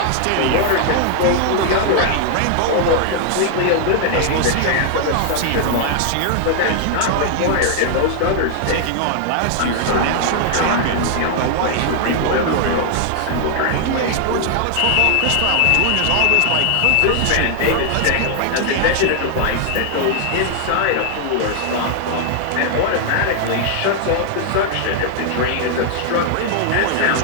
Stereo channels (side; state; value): both; different; correlation 0.00